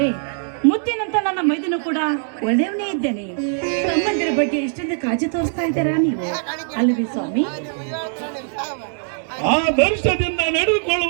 ಮುತ್ತಿನಂತ ನನ್ನ ಮೈದನು ಕೂಡ ಒಳ್ಳೆಯವನೇ ಇದ್ದೇನೆ. ತಮ್ಮಂದಿರ ಬಗ್ಗೆ ಎಷ್ಟೊಂದು ಕಾಳಜಿ ತೋರಿಸ್ತಾ ಇದ್ದೀರಾ ನೀವು, ಅಲ್ಲವೇ ಸ್ವಾಮಿ? ಆ ದರ್ಶದಿಂದ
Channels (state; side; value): silent; left; digital silence